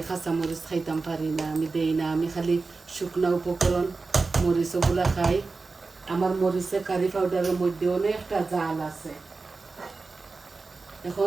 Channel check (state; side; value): quieter; left; 4.0 dB